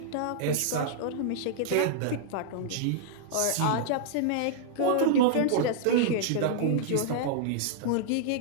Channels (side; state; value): both; different; correlation -0.01